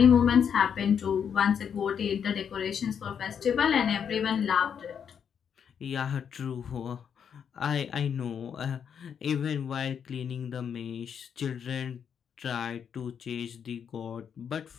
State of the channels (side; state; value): right; quieter; 7.7 dB